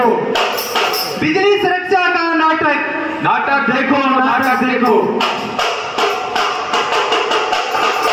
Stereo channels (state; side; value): identical; both; correlation 1.00